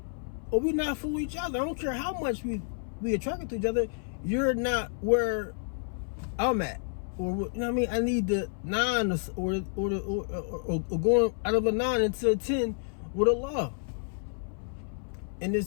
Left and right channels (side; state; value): right; silent; 58 dB below the other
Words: Or we're not for each other. I don't care how much we attracted to each other. You're not where I'm at. Or, you know what I mean? I need the 9 or going out of a 9 into a 10 with Allah. And